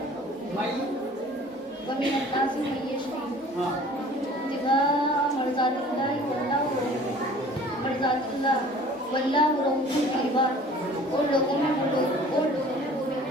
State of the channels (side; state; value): both; normal; correlation 0.48